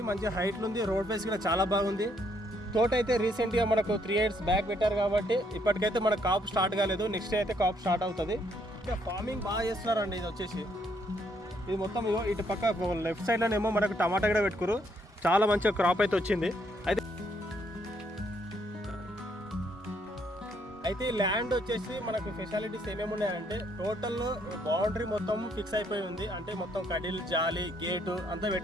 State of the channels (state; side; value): normal; both; correlation 0.71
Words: మంచి హైట్లో ఉంది. రోడ్ ఫేస్ కూడా చాలా బాగుంది. తోట అయితే రీసెంట్గా మనకు 3 years బ్యాక్ పెట్టారు కాబట్టి ఇప్పటికైతే మనకు కాపు స్టార్ట్ కాలేదు. నెక్స్ట్ అయితే కాపు స్టార్ట్ అవుతుంది. ఇంకా ఫార్మింగ్ బాగా చేస్తున్నారండి. ఇది వచ్చేసి ఇది మొత్తం ఇగో ఇటు పక్క లెఫ్ట్ సైడ్లోనేమో మనకు టమాటా కూడా పెట్టుకురు. చాలా మంచిగా క్రాప్ అయితే వచ్చింది. అయితే ఈ ల్యాండ్ వచ్చేసి మనకు ఫెసిలిటీస్ ఏమేమి ఉన్నాయంటే టోటల్ బౌండరీ మొత్తం ఫిక్స్ అయిపోయి ఉంది. అంటే మొత్తం కడిల్ జాలి గేటు అంతా